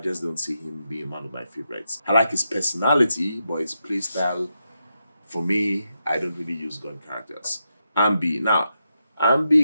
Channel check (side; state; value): both; inverted; correlation -0.85